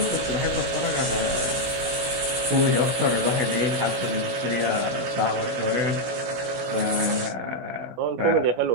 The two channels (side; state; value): left; late; 16 ms